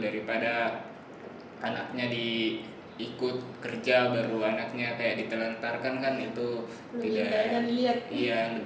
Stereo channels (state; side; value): identical; both; correlation 1.00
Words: anaknya ikut kerja baru anaknya kayak ditelantarkan, kan itu Lebih tidak. banyak dilihat. Iya,